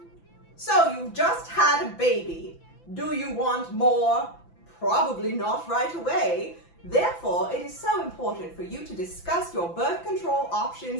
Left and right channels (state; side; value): late; right; 5.9 ms